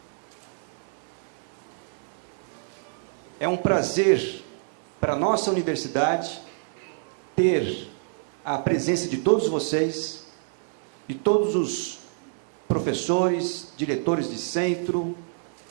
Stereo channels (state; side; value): silent; left; digital silence